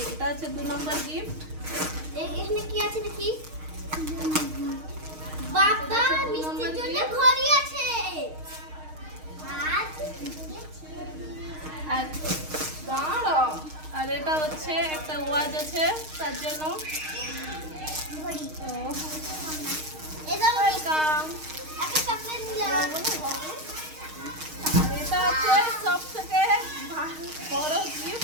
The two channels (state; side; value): late; left; 6.4 ms